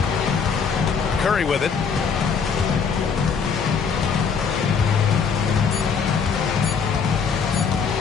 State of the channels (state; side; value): quieter; right; 6.0 dB